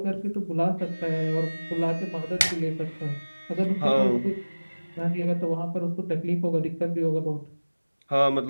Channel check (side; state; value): both; inverted; correlation -1.00